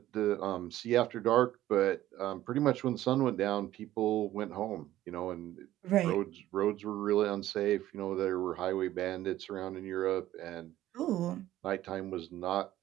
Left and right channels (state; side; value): quieter; left; 14.1 dB